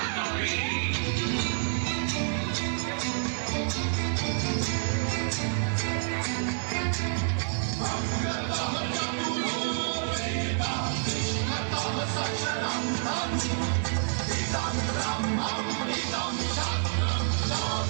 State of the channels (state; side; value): silent; left; digital silence